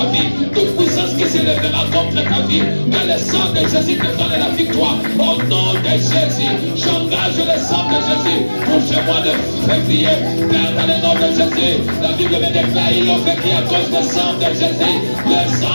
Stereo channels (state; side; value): inverted; both; correlation -1.00